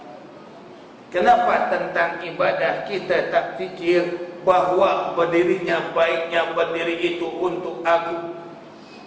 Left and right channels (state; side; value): identical; both; correlation 1.00